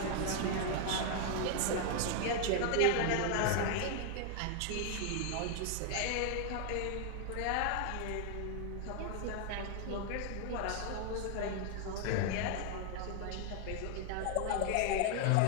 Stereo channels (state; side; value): different; both; correlation 0.00